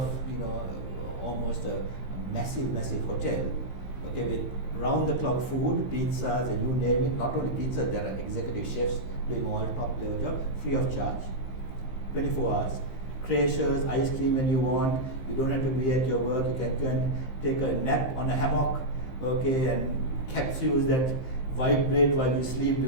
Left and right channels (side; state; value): right; late; 15 ms